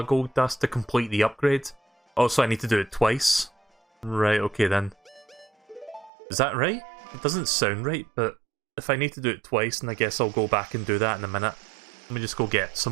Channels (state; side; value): drops out; left; at 6.1 s